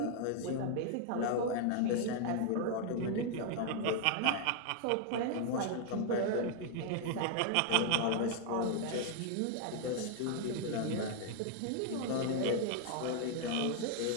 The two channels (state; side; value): different; both; correlation 0.00